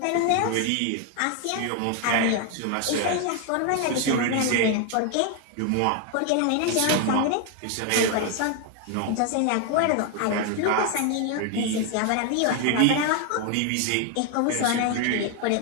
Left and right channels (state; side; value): different; both; correlation 0.01